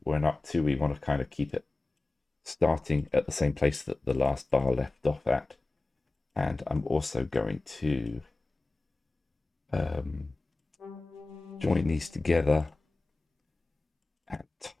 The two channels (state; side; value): quieter; right; 3.1 dB